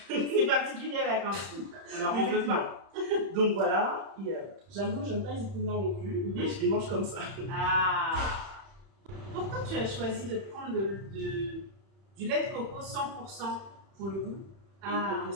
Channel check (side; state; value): left; late; 31 ms